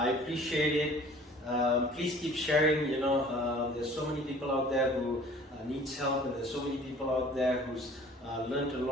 appreciate it. Please keep sharing. There's so many people out there who needs help, and there's so many people out there who's learned a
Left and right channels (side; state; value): both; normal; correlation 0.50